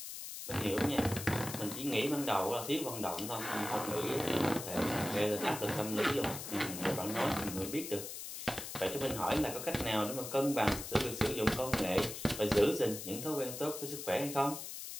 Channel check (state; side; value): noise; left; hiss, 8 dB below the sound